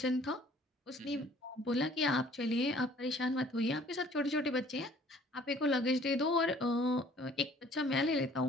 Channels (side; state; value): both; normal; correlation 0.55